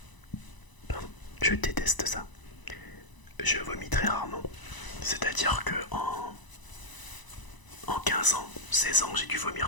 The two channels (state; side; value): late; right; 1.0 ms